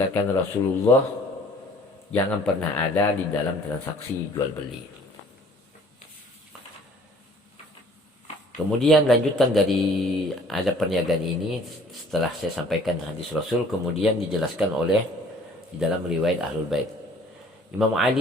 Rasulullah jangan pernah ada di dalam transaksi jual beli. Kemudian lanjutan dari adab perniagaan ini setelah saya sampaikan hadis Rasul, kemudian dijelaskan oleh di dalam riwayat Ahlul Bait. Imam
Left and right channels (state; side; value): normal; both; correlation 0.54